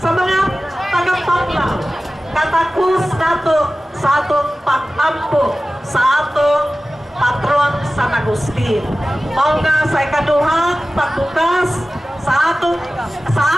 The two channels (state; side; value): normal; both; correlation 0.96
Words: mga taga-Panglao. Katakos nato sa atong pag-ampo sa atong patron sa Agustin. Mao nga sa ikaduhang pagbukas sa atong